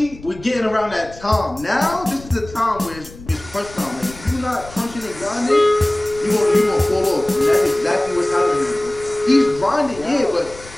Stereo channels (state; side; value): noise; left; rumble, 18 dB below the sound